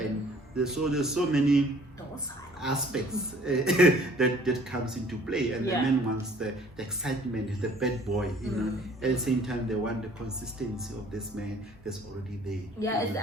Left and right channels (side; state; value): both; normal; correlation 0.55